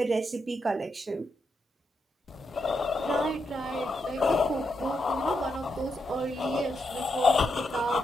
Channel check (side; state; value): both; normal; correlation 0.82